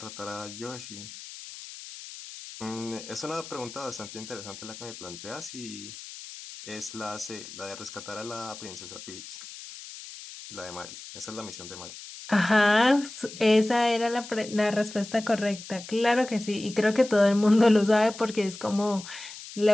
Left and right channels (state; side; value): noise; left; hiss, 14 dB below the sound